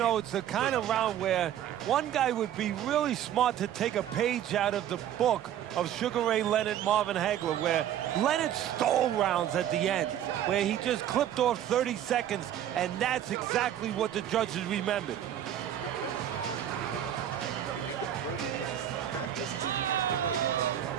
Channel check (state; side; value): quieter; left; 10.8 dB